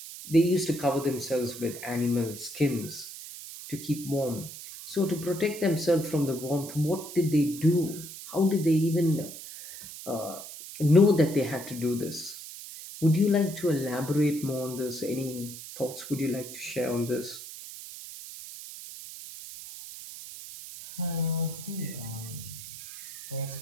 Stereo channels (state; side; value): noise; right; hiss, 12 dB below the sound